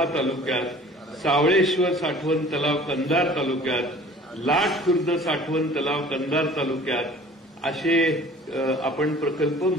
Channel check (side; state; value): both; normal; correlation 0.48